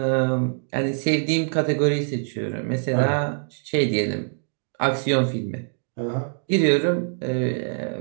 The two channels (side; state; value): left; silent; digital silence